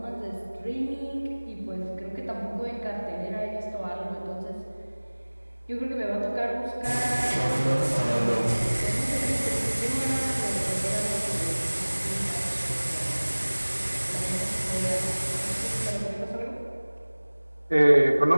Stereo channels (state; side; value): inverted; both; correlation -1.00